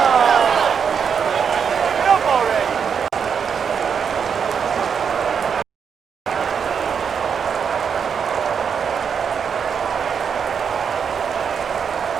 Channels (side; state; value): left; quieter; 6.8 dB